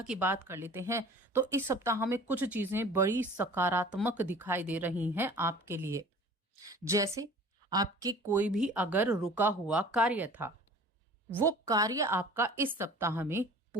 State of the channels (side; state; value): both; normal; correlation 0.44